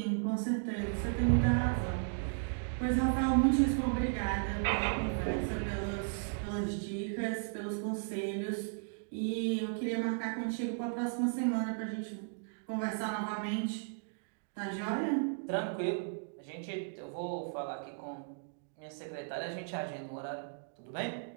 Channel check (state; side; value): silent; left; digital silence